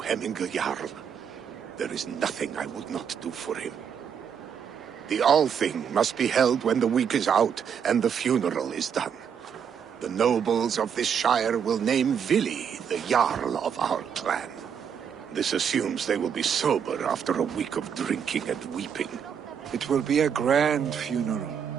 Hemmingur Jarl. There is nothing I would not do for him. The Althing must be held when the week is out and the funeral is done. The nobles of this shire will name Vili the Jarl of our clan. This assumes they will be sober after a week of drinking and weeping. It will be a grand funeral.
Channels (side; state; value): left; quieter; 7.6 dB